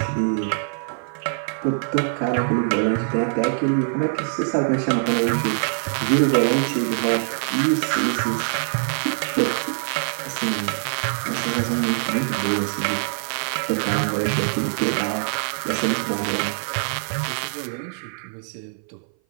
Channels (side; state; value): left; silent; 57 dB below the other